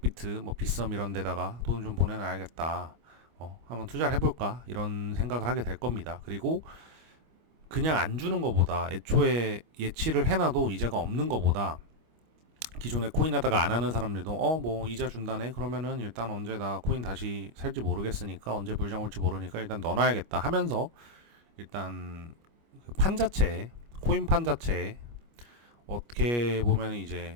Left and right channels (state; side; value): late; left; 25 ms